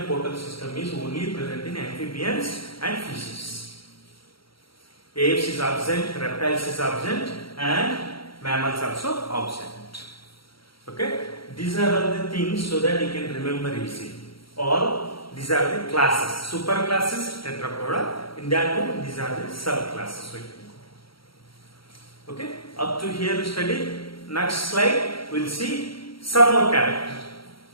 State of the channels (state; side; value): late; right; 0.74 ms